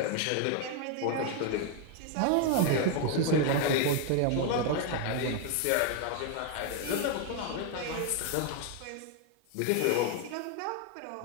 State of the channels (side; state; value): both; different; correlation 0.01